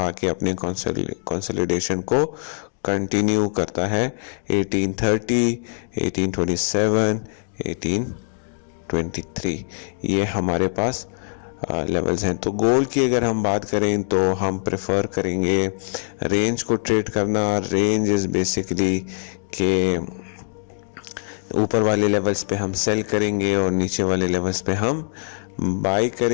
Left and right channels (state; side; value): silent; right; digital silence